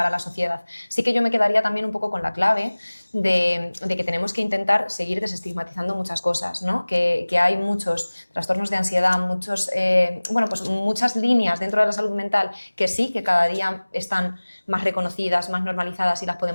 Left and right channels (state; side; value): inverted; both; correlation -1.00